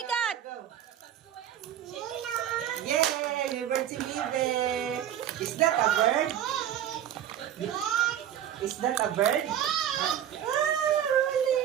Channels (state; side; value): quieter; left; 10.6 dB